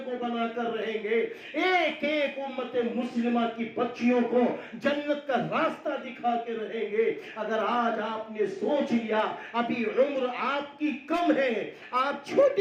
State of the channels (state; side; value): identical; both; correlation 1.00